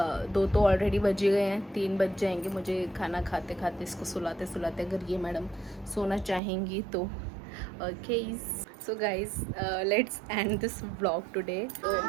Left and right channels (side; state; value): left; drops out; at 6.4 s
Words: 2 तो ऑलरेडी बज गए हैं, 3 बज जाएंगे मुझे खाना खाते खाते, इसको सुलाते सुलाते, अगर ये मैडम सोना चाहेंगी तो। Okay so guys let's end this vlog today. तो